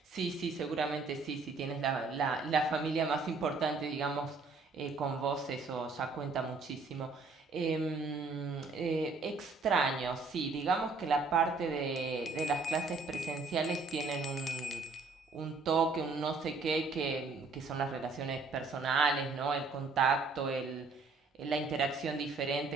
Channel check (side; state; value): left; quieter; 4.0 dB